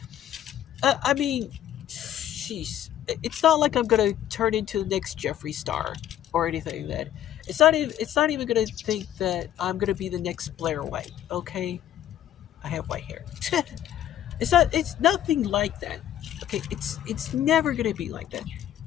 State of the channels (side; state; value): right; quieter; 11.4 dB